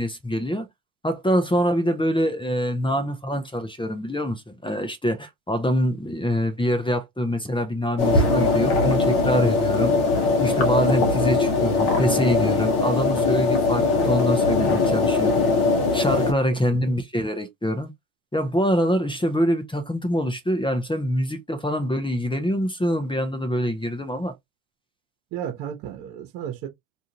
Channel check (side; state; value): both; normal; correlation 0.48